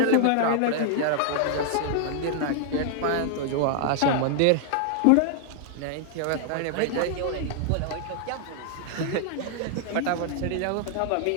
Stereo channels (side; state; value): both; different; correlation -0.01